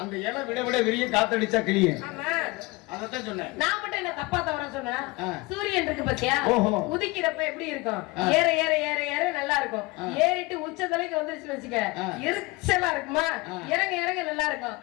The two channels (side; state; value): right; quieter; 23.5 dB